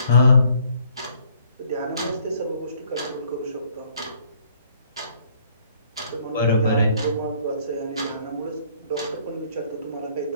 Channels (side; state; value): both; inverted; correlation -0.63